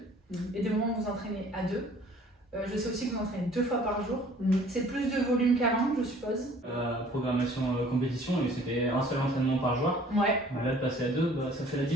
et des moments où vous entraînez à deux. Je sais aussi que vous entraînez 2 fois par jour. C'est plus de volume qu'avant, je suppose. Programmation compétition, et c'était un seul entraînement par jour. Ouais. Là, de passer à 2, bah, ça fait la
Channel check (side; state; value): both; normal; correlation 0.53